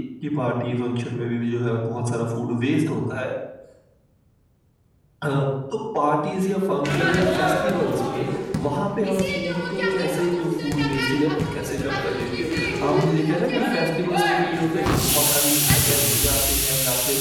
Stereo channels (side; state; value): both; identical; correlation 1.00